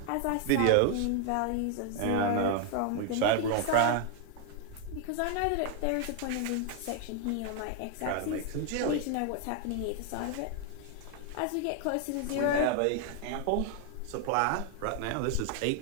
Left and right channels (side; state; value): both; different; correlation 0.00